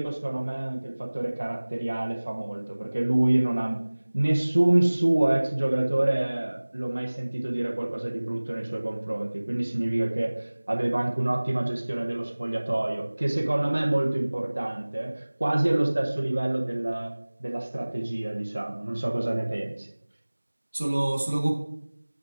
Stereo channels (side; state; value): both; inverted; correlation -1.00